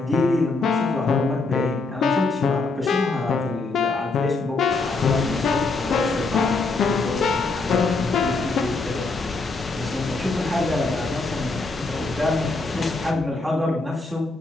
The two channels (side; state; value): right; quieter; 3.7 dB